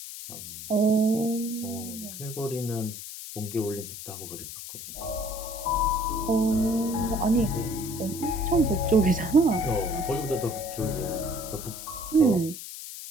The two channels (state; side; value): noise; left; hiss, 10 dB below the sound